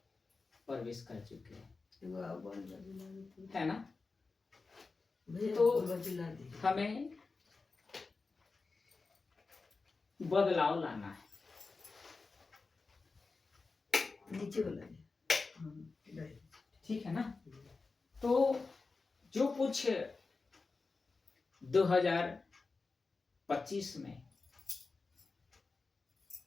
प्रवेश कर चुके हैं, है ना? तो हमें बदलाव लाना है। नीचे वाला ठीक है ना? तो जो कुछ 2025 में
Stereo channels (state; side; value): quieter; right; 4.1 dB